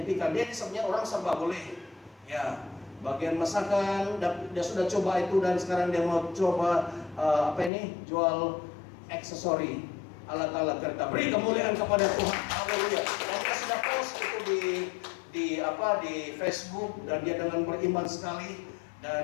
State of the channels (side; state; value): right; drops out; at 7.7 s